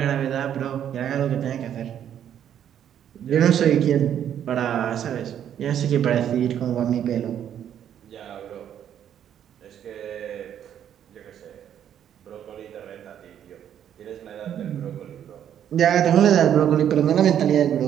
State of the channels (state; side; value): quieter; left; 9.8 dB